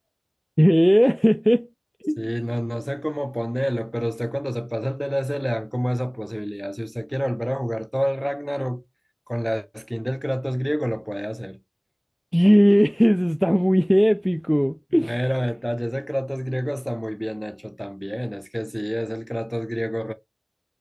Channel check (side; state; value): both; identical; correlation 1.00